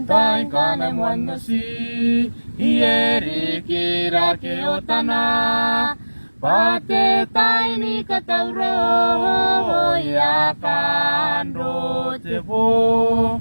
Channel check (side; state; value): both; inverted; correlation -1.00